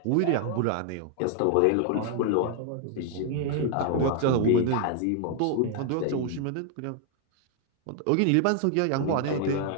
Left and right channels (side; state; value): both; different; correlation 0.00